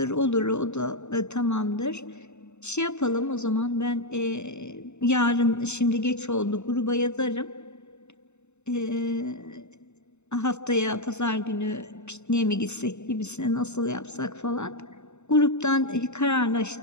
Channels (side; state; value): right; late; 0.82 ms